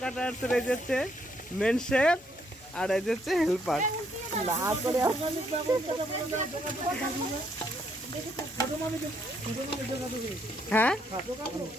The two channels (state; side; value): normal; both; correlation 0.72